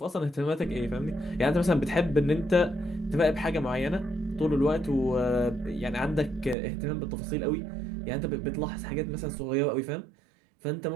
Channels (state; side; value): drops out; left; at 6.6 s